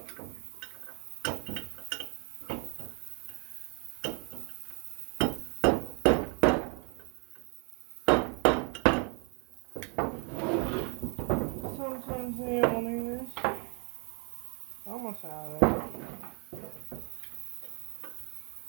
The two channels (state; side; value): quieter; left; 33.3 dB